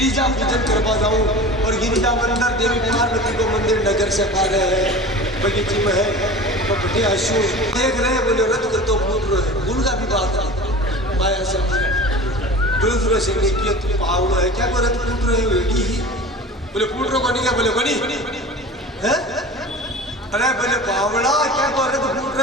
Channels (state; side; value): normal; both; correlation 0.36